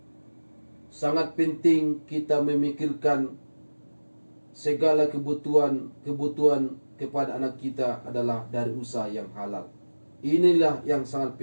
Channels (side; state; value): both; inverted; correlation -1.00